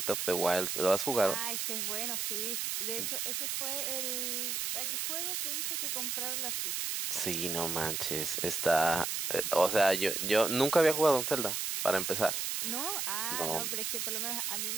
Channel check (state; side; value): noise; right; hiss, 1 dB below the sound